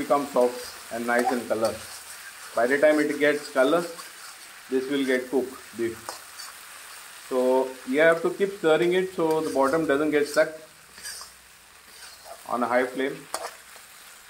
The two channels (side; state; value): both; identical; correlation 1.00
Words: soft and nice in color. By the time it gets color, this will get cooked beef. So you have to keep stirring it so the bottom doesn't get stuck on a high flame.